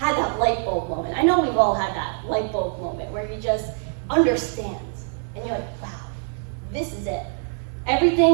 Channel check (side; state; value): left; silent; 60 dB below the other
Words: that light bulb moment. I know we've all had that light bulb moment where you just understand, and you're like, wow, this is it.